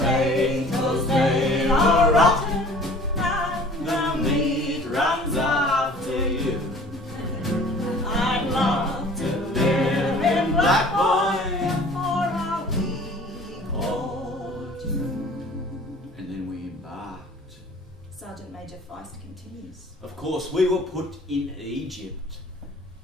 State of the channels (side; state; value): both; normal; correlation 0.48